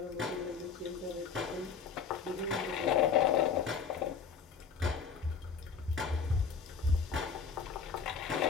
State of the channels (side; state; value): right; quieter; 6.0 dB